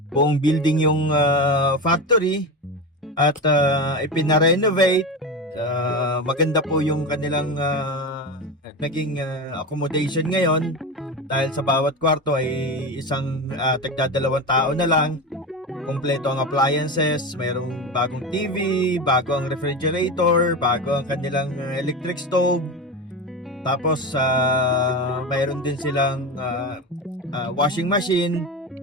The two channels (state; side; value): normal; both; correlation 0.22